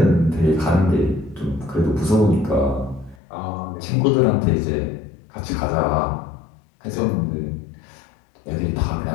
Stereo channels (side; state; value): right; drops out; at 3.2 s